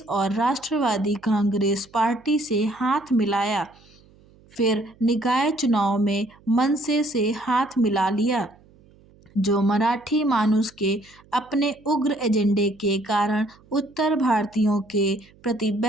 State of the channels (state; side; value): noise; right; hum, 28 dB below the sound